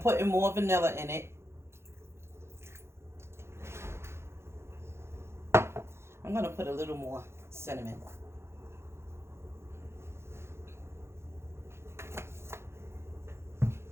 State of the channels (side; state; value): left; late; 0.13 ms